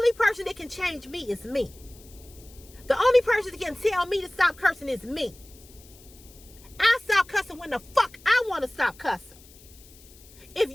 person that can change me is me. The only person that can tell me to stop cursing is me. I stop cussing when the fuck I want to stop cussing. If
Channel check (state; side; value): noise; left; hiss, 23 dB below the sound